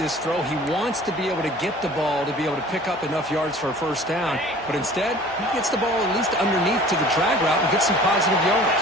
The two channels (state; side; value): normal; both; correlation 0.47